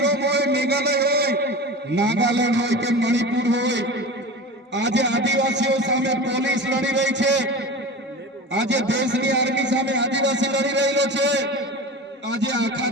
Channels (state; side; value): normal; both; correlation 0.31